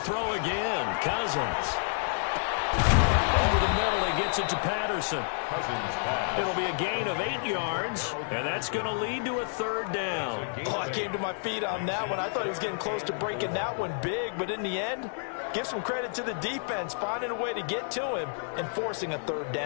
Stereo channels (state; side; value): silent; right; 58 dB below the other